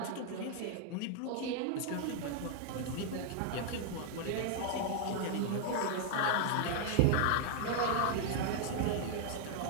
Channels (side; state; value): both; different; correlation 0.00